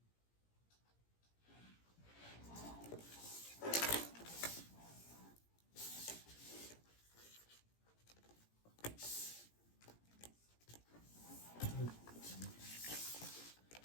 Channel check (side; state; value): right; late; 17 ms